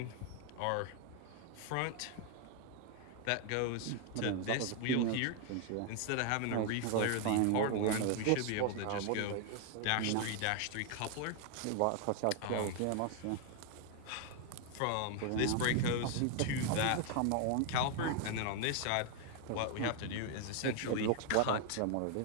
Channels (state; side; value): different; both; correlation 0.00